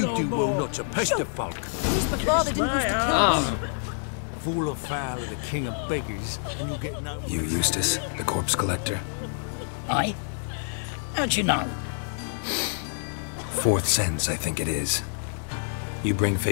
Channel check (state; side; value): silent; right; digital silence